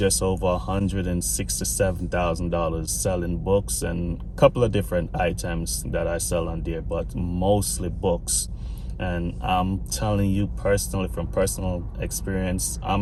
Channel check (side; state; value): both; identical; correlation 1.00